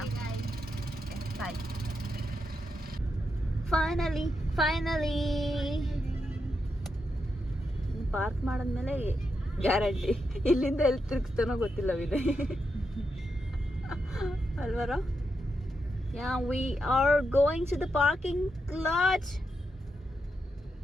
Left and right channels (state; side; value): normal; both; correlation 0.85